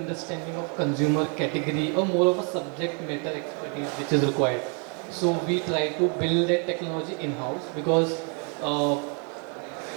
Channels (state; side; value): quieter; left; 37.3 dB